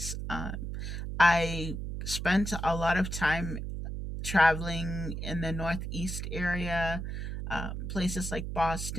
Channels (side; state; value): right; noise; hum, 5 dB below the sound